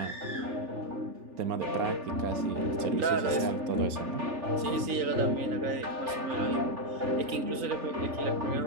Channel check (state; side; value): late; left; 3.9 ms